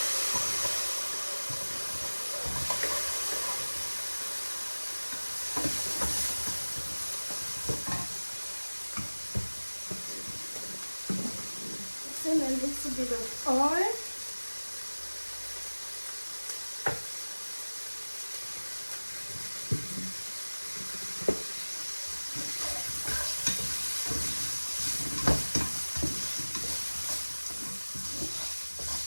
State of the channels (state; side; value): inverted; both; correlation -1.00